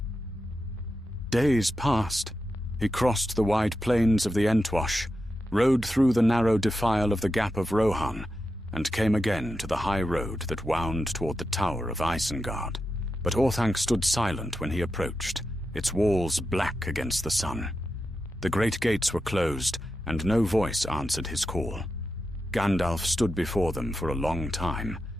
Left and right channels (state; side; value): normal; both; correlation 0.89